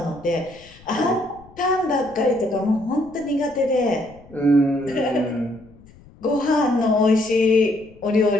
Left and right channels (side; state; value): left; noise; rumble, 25 dB below the sound